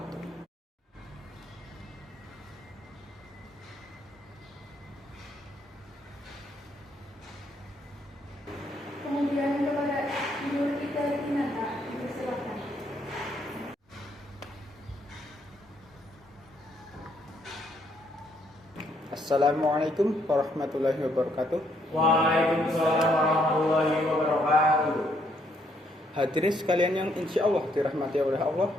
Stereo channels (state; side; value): normal; both; correlation 0.71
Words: Kemudian kepada Idul Fitri Dinata, dipersilakan. Assalamualaikum warahmatullahi wabarakatuh. Waalaikumsalam warahmatullahi wabarakatuh. Hadirin sekalian yang insya Allah dirahmati oleh Allah,